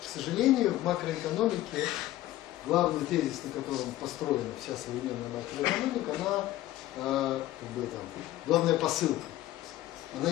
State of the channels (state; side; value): quieter; right; 15.2 dB